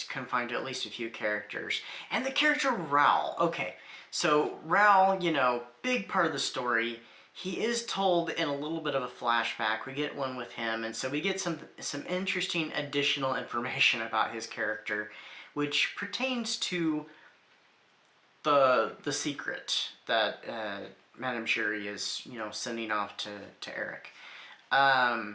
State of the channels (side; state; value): both; identical; correlation 1.00